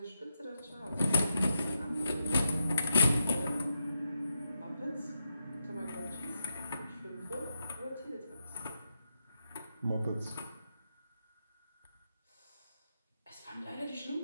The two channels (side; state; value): both; inverted; correlation -0.84